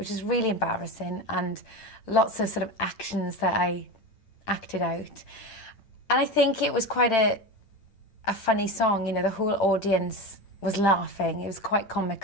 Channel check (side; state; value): right; late; 8.9 ms